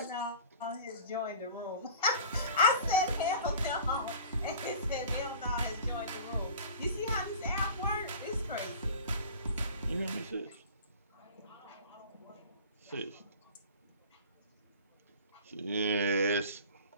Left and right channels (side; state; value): both; inverted; correlation -0.41